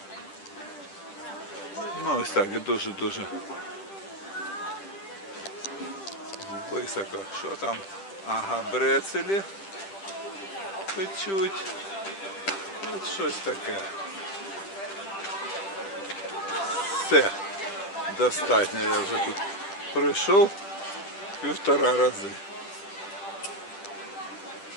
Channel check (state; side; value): late; right; 10 ms